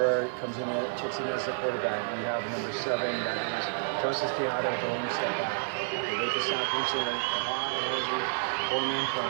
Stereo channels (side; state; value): left; silent; digital silence